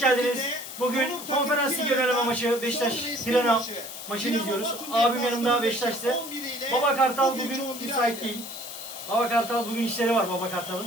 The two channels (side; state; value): left; noise; hiss, 11 dB below the sound